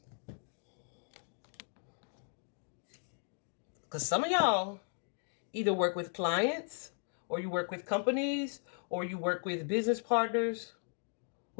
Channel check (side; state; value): right; silent; 53 dB below the other